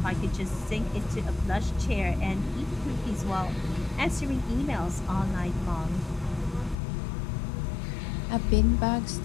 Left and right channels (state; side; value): drops out; right; at 6.8 s